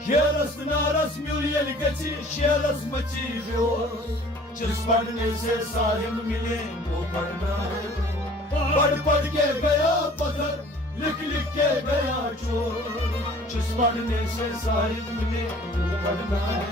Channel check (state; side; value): normal; both; correlation 0.50